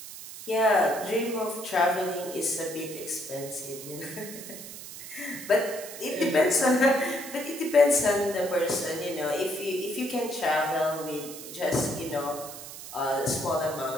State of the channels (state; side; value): noise; right; hiss, 12 dB below the sound